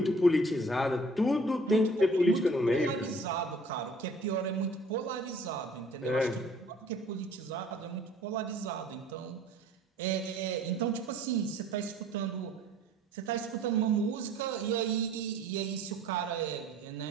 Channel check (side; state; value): both; normal; correlation 0.52